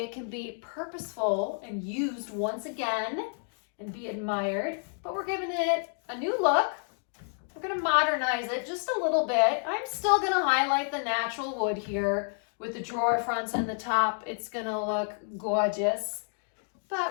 can be purposeful and used once again and be admired. But we're giving it a new look. We're going to modernize it just a little bit. I'm still going to highlight the natural wood here with the drawer fronts and the top. It's going to look gorgeous.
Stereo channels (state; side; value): silent; right; 58 dB below the other